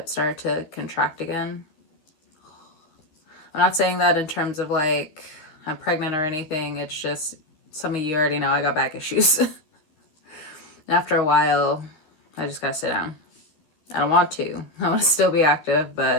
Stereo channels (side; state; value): right; late; 13 ms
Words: started to contract again. I'm not saying that in terms of like I'm pregnant or anything. It's just some of you already know I got back issues. And after a while, I just gotta sit down. I don't want to. I want to still be active,